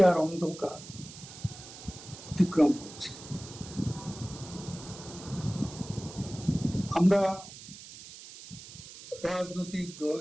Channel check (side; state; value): right; noise; hiss, 15 dB below the sound